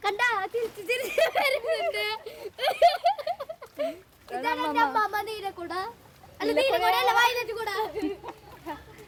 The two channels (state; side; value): identical; both; correlation 1.00